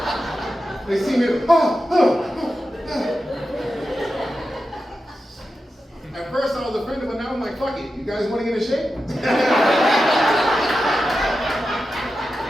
They see me, At first I was offended, but now I'm like, fuck it. You guys want to get in shape?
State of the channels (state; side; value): normal; both; correlation 0.90